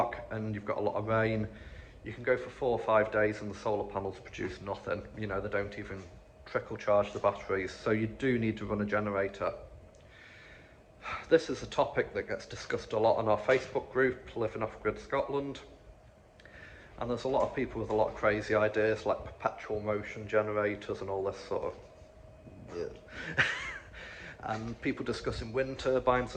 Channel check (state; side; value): identical; both; correlation 1.00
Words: and you've got a lot of rain, you can go for 4 or 5 days and the solar panels produce nothing. You know, they don't even trickle charge the batteries, so you do need to run a generator. This is a topic that gets discussed a lot on our Facebook group, Living Off Grid Scotland. And there's a lot of people with a lot of crazy ideas like perpetual motion generators and all this sort of and people discussing wind turbines